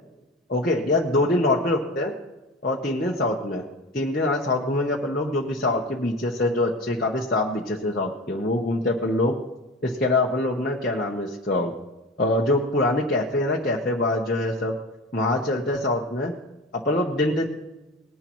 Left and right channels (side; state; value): both; normal; correlation 0.32